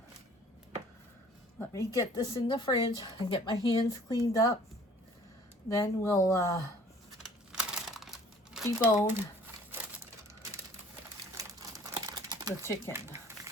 Let me get this in the fridge and get my hands cleaned up. Then we'll debone the chicken.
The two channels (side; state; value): both; normal; correlation 0.53